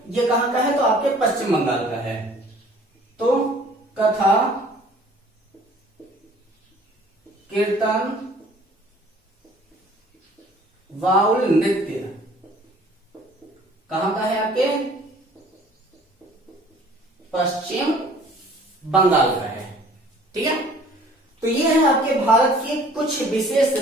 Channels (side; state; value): both; normal; correlation 0.53